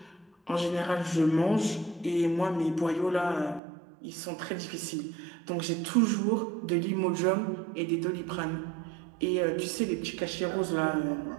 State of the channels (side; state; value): left; drops out; at 3.6 s